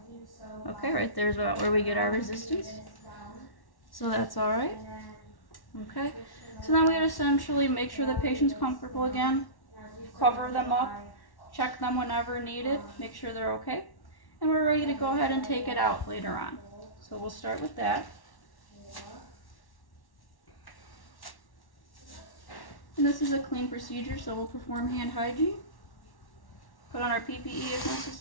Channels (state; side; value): late; right; 1.1 ms